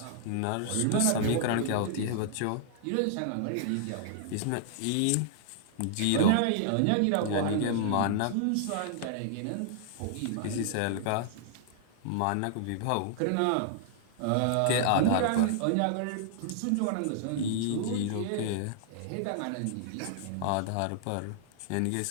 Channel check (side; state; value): both; different; correlation -0.01